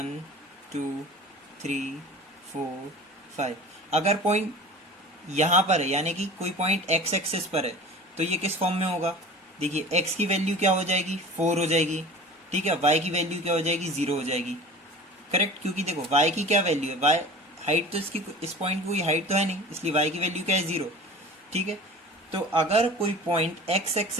2 3 4 5, अगर पॉइंट यहाँ पर है, यानी कि कोई पॉइंट एक्स एक्सिस पर है, तो ये किस फॉर्म में होगा? देखिए, एक्स की वैल्यू क्या हो जाएगी? 4 हो जाएगी, ठीक है। वाई की वैल्यू क्या हो जाएगी? 0 हो जाएगी, करेक्ट। क्योंकि देखो वाई की क्या वैल्यू है, वाई हाइट तो इसकी, इस पॉइंट की कोई हाइट तो है नहीं, इसलिए वाई की वैल्यू क्या है? 0, ठीक है। तो अगर कोई पॉइंट एक्स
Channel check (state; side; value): normal; both; correlation 0.39